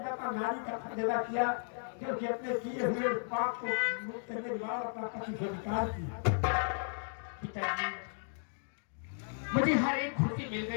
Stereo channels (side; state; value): right; silent; digital silence